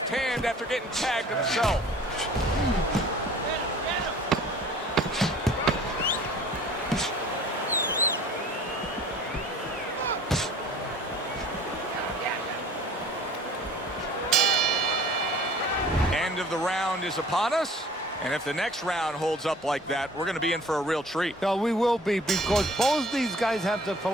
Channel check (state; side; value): normal; both; correlation 0.49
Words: hand after getting tagged himself. End of the round is upon us. And if the next round holds up like that, we're going to be in for a real treat. No, we will be, because both these guys have the